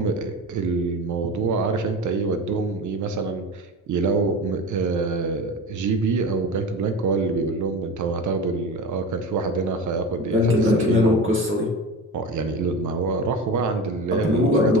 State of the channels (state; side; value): normal; both; correlation 0.29